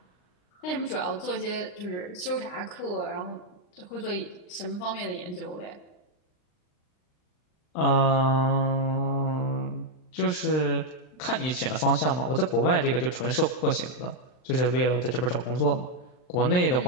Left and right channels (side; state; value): right; late; 39 ms